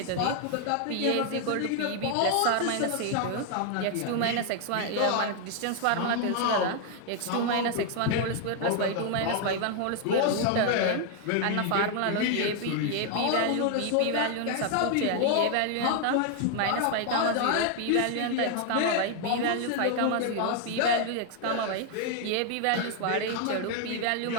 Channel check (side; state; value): both; different; correlation 0.00